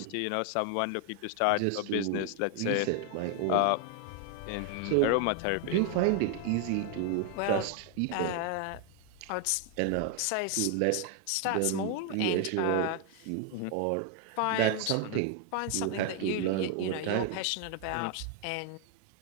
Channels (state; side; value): different; both; correlation 0.00